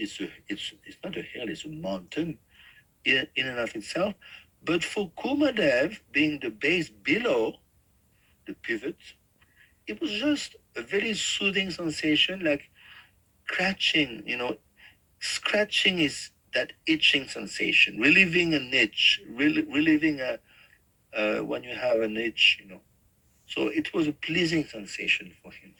not a hill, it's a mountain in and of itself. But for Kumadev, being the base below the pivot, it was just a very soothing sensation, like scratching, scratching is that itching sensation, relieving an itch, relieving when you have an itch, So it was a pleasing sensation for him.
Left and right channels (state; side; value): identical; both; correlation 1.00